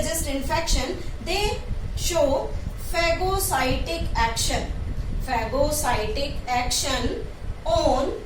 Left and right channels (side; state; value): both; identical; correlation 1.00